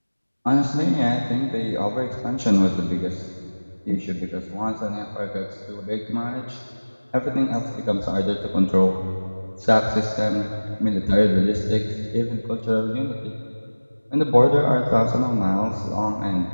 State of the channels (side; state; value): both; inverted; correlation -1.00